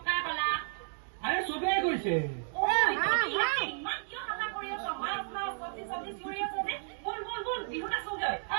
আৰে চবেই কৈছে।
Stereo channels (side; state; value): left; silent; 56 dB below the other